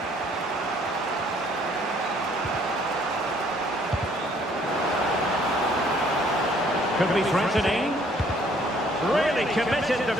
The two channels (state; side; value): normal; both; correlation 0.61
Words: Could be threatening. Really committed